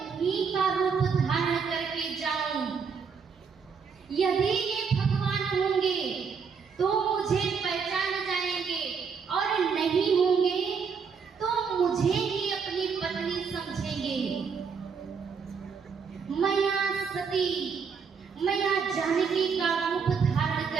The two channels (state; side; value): quieter; left; 5.9 dB